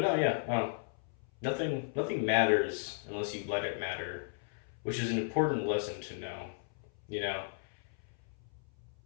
no, yeah, nothing matters unless you let it matter, which is an important lesson to know. You know,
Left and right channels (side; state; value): right; silent; 54 dB below the other